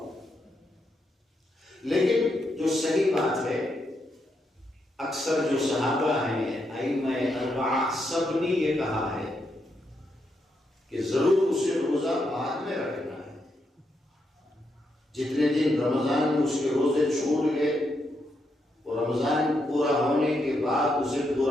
لیکن جو صحیح بات ہے، اکثر جو صحابہ ہیں ائمہ اربعہ سب نے یہ کہا ہے کہ ضرور اسے روزہ بعد میں رکھنا ہے، جتنے دن رمضان میں اس کے روزے چھوٹ گئے اور رمضان پورا ہونے کے بعد اسے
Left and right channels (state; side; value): normal; both; correlation 0.81